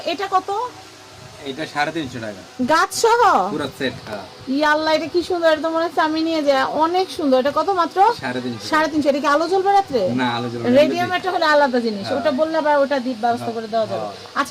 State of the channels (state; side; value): identical; both; correlation 1.00